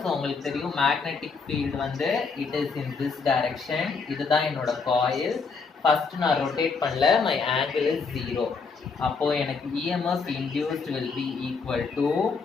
So உங்களுக்கு தெரியும் magnetic field வந்து it is in this direction. இதுதான் என்னோட coil. First நான் rotate பண்ணல, my angle is 0. அப்போ எனக்கு EMF induced will be equal to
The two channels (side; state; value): right; quieter; 4.9 dB